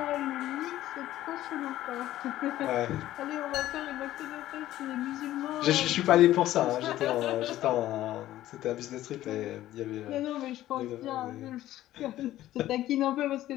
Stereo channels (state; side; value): quieter; right; 14.2 dB